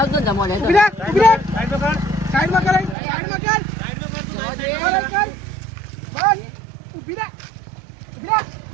આવતો ને મોડે ઉભી રાખ, ઉભી રાખ. સાઈડ પર કર સાઈડમાં કરાય સાઈડમાં કર. સાઈડ પર કર તું કર, કર. બસ ઉભી રાખ, ઉભી રાખ.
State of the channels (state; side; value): drops out; left; at 3.0 s